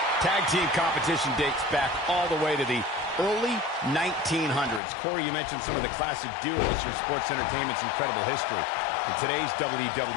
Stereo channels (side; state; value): right; drops out; at 4.8 s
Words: Tag team competition dates back all the way to the early 1900s. Corey, you mentioned some of the classic duos from sports entertainment's incredible history. In today's